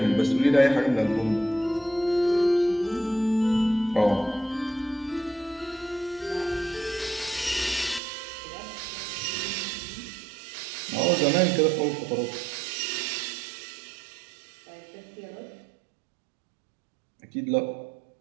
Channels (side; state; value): left; drops out; at 8.0 s